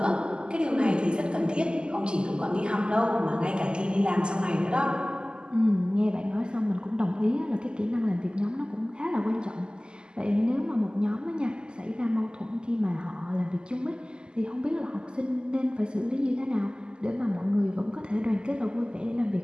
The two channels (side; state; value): left; late; 0.048 ms